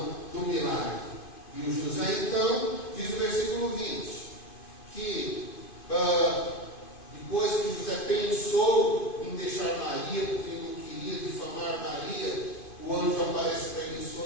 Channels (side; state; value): right; late; 2.5 ms